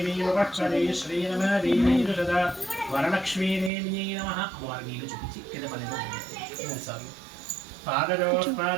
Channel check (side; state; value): left; drops out; at 3.7 s